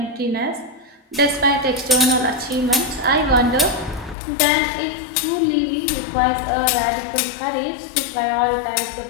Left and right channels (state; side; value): drops out; right; at 4.2 s